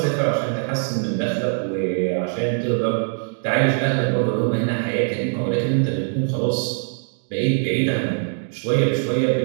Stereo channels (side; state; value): left; silent; 64 dB below the other